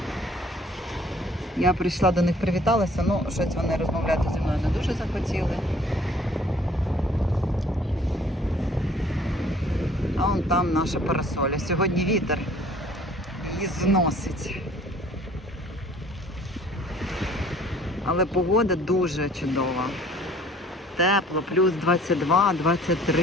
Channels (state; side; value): normal; both; correlation 0.54